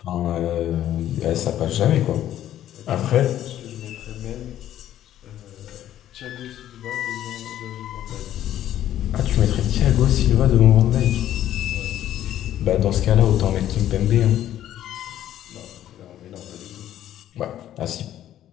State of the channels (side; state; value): right; quieter; 11.9 dB